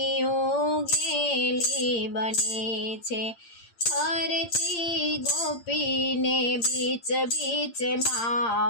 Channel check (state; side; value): late; right; 8.7 ms